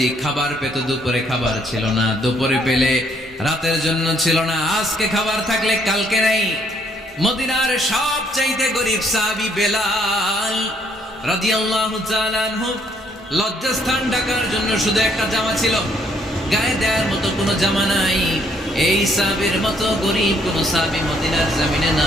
খাবার পেত, দুপুরে খাবার ছিল না, দুপুরে পেলে রাতের জন্য ছিল না, আজকে খাবার থাকলে কালকে নেই। মদিনার সবচেয়ে গরীব সাহাবী বেলাল রাদিয়াল্লাহু তাআলা আনহু লজ্জাস্থান ঢাকার জন্য শুধু একটা জামা ছিল, গায়ে দেওয়ার মতো কোনো জামা নাই। এই সাহাবীর মতো গরীব কোনো সাহাবী মদিনার জমিনে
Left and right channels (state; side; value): normal; both; correlation 0.68